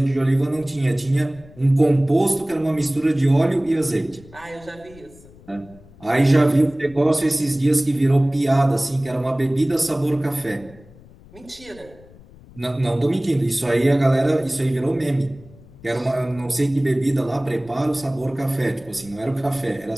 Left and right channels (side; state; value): left; noise; rumble, 23 dB below the sound